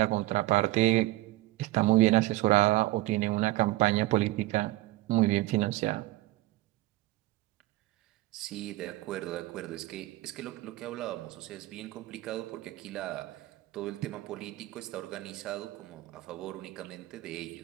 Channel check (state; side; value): quieter; left; 17.9 dB